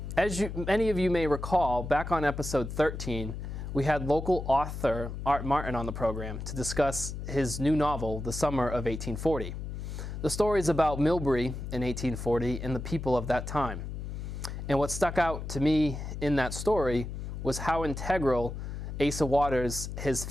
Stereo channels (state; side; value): noise; left; hum, 7 dB below the sound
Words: As many of you may recall, back on episode 13, we had local author Art Martin on the program to discuss his new novel, The Summer of 1840. The story is about Millbury in 1840 and the people of that time. And what stuck out to me in that story was how integral Asa Waters, his